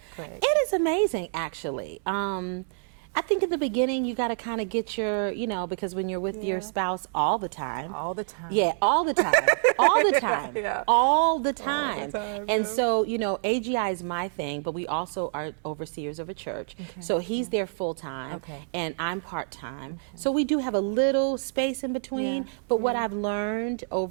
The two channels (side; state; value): left; silent; digital silence